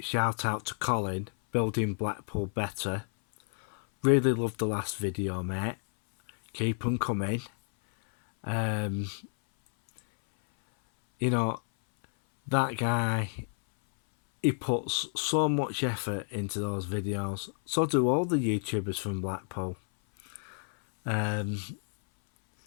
out to Colin, Building Blackpool Better. Really loved the last video, mate. Keep them coming. That guy, he puts so much effort into those videos. So do all the YouTubers from Blackpool.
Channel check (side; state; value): right; silent; 58 dB below the other